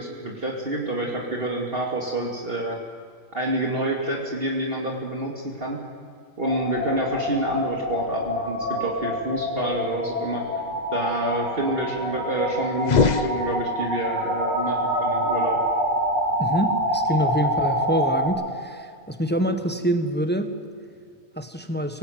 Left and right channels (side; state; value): both; normal; correlation 0.04